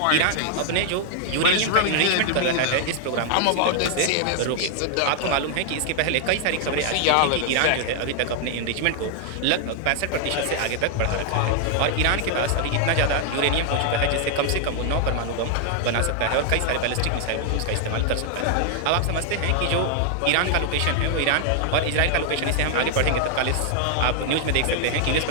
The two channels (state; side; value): different; both; correlation 0.00